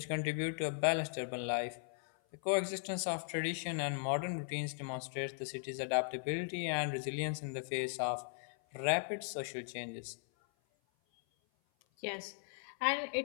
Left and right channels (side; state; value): right; silent; 52 dB below the other